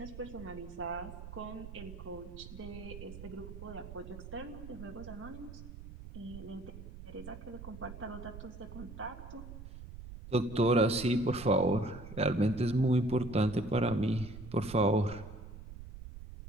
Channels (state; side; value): noise; right; rumble, 12 dB below the sound